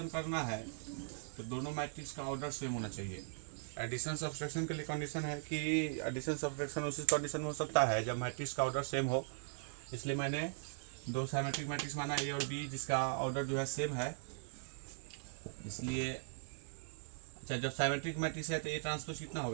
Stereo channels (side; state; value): left; silent; digital silence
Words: करना है तो दोनों मैट्रिक्स का ऑर्डर सेम होना चाहिए। एडिशन सब्सट्रैक्शन के लिए कंडीशन है कि एडिशन सब्सट्रैक्शन उसी कंडीशन में हो सकता है जब मैट्रिक्स का ऑर्डर सेम हो। इसलिए मैंने दो सिमेट्रिक मैट्रिक्स माना ए और बी जिसका ऑर्डर जो है सेम है। इसलिए अच्छा, जब सिमेट्रिक मैट्रिक्स है तो ए ट्रांसपोज कितना